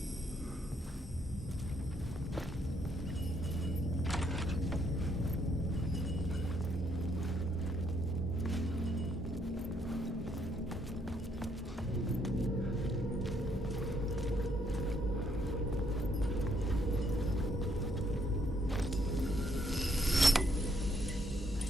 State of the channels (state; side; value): normal; both; correlation 0.71